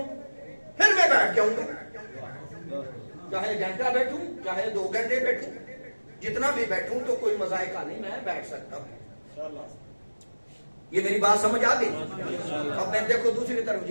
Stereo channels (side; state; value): both; inverted; correlation -1.00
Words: پھر میں بیٹھ جاؤں گا. چاہے گھنٹہ بیٹھوں، چاہے 2 گھنٹے بیٹھوں، جتنا بھی بیٹھوں تو کوئی مذائقہ نہیں، میں بیٹھ سکتا ہوں. یہ میری بات سمجھ آ گئی؟ اب میں دیکھو دوسری طرف